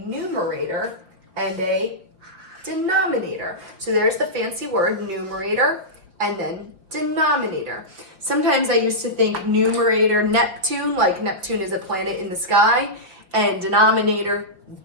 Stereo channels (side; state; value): left; late; 5.2 ms